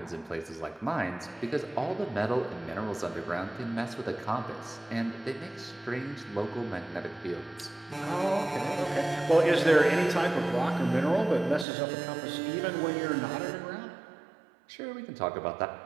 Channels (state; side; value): drops out; left; at 11.7 s